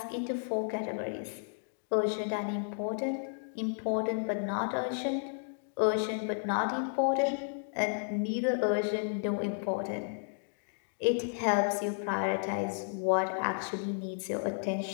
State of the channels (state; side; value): silent; right; digital silence